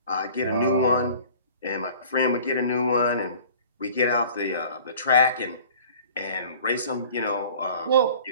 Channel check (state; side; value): inverted; both; correlation -0.47